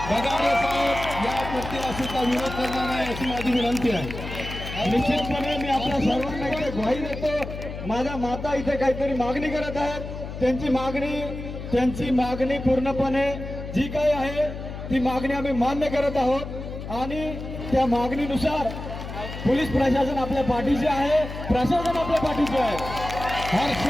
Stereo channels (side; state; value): left; noise; hum, 9 dB below the sound